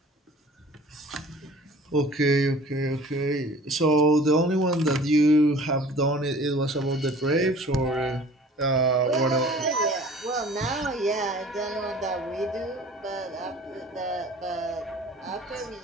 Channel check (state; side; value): normal; both; correlation 0.47